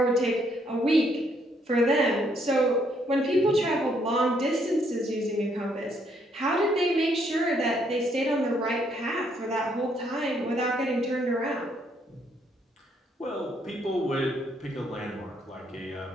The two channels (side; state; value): both; normal; correlation 0.71